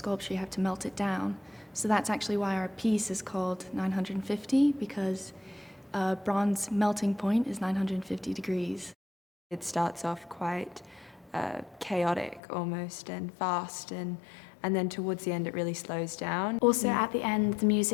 you have to melt it down. So that's actually why our piece is called 950, because bronze melting point is 950 degrees. It starts off quite chaotic almost and fast, and then towards the end it really slows down. Also at the end the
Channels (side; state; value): right; drops out; at 12.4 s